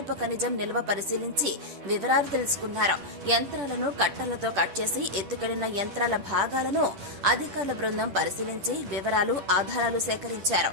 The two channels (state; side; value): late; left; 10 ms